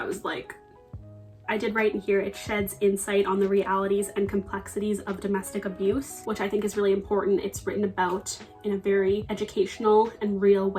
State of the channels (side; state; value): both; identical; correlation 1.00